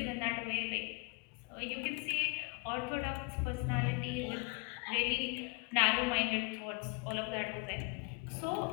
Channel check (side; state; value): right; quieter; 29.8 dB